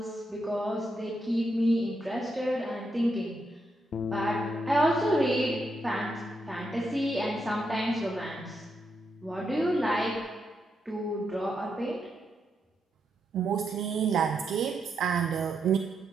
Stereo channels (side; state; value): both; normal; correlation 0.81